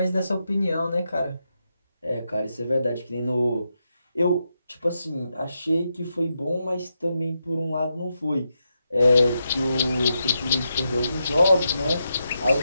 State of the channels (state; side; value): inverted; both; correlation -0.85